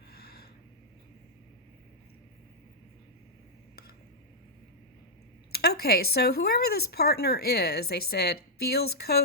Okay, so whoever this partner is, they said, feels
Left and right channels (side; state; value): both; normal; correlation -0.06